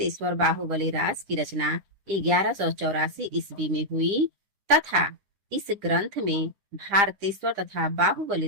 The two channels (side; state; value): left; late; 9.9 ms